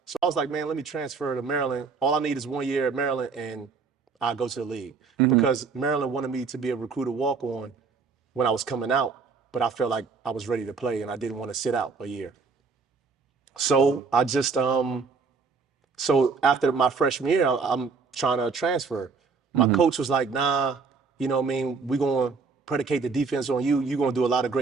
So I was like, man, let me transfer to Maryland. All I need is 1 year at Maryland, and I'll go to the league. Because Maryland wanted me to be a recruiter walk-on when I was coming out, but I felt like I was ready to play, and I didn't want to sit out a year. So I just, so after my freshman year, I'm trying to transfer. My coach was like, nah, you know what I mean? We're going to predicate the defense on you. You're going to do a lot of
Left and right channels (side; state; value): left; quieter; 4.9 dB